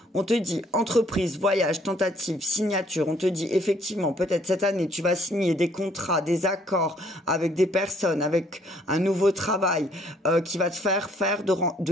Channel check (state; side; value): normal; both; correlation 0.63